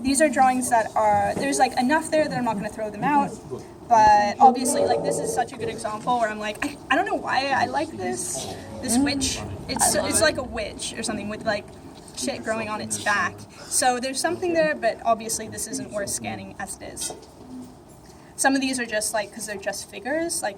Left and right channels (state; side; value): identical; both; correlation 1.00